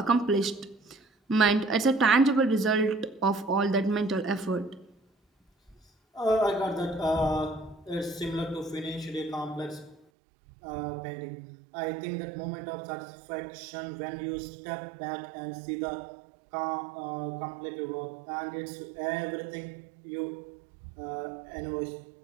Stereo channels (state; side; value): drops out; left; at 10.0 s